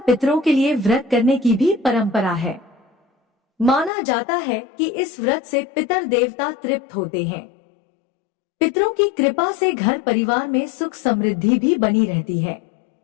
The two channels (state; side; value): drops out; right; at 3.9 s